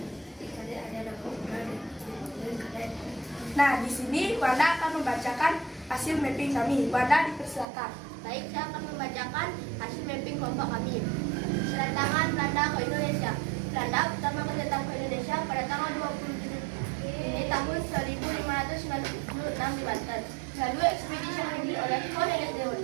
Nah, di sini Wanda akan membacakan hasil mapping kami. Wanda, dipersilakan. Baik, saya akan membacakan hasil mapping kelompok kami. Kedatangan Belanda ke Indonesia. Belanda pertama datang ke Indonesia pada tanggal 27 ini tahun 1596 di Banten. Lalu ekspedisi ini oleh Cornelis de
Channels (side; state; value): left; drops out; at 7.7 s